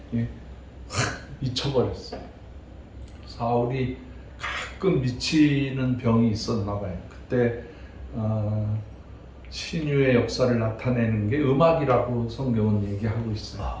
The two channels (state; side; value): identical; both; correlation 1.00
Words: 미쳐버렸어요. 사울이 가끔 미치는 병이 있었나 봐요. 그때 신유의 역사를 나타내는 게 음악이라고 성경은 얘기하고